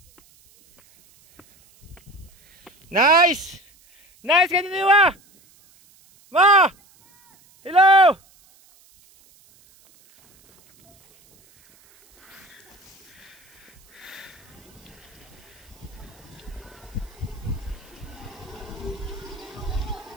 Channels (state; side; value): noise; right; hiss, 29 dB below the sound